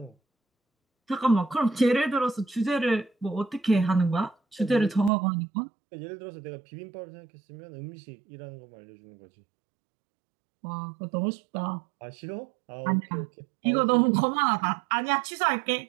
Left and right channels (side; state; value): left; drops out; at 5.1 s